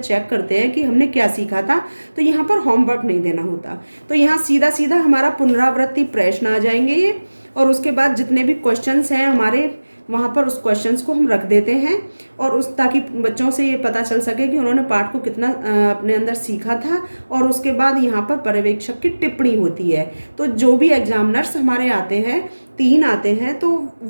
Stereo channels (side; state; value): both; inverted; correlation -1.00